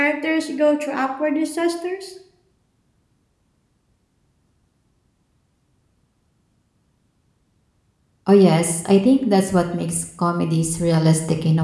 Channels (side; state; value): both; identical; correlation 1.00